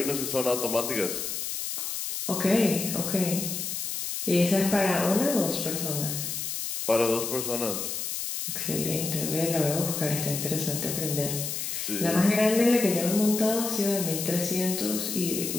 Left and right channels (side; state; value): left; noise; hiss, 4 dB below the sound